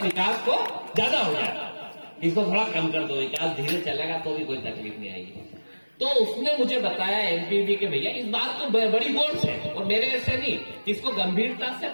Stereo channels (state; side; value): inverted; both; correlation -1.00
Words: विकास को ज्यादा हो जाए, इसको थोड़ा कम कर दो, विकास धीरे चलेगा तो भी कोई तकलीफ नहीं आएगी। तो उसने मुझे बताया एमपीबी के भैया इस बात को बड़ी गौर से और मेरे ऐसे नहीं, इसको गंभीरता से